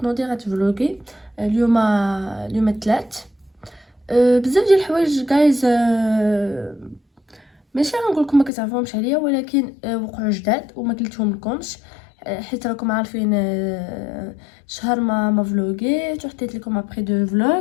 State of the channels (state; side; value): drops out; right; at 8.5 s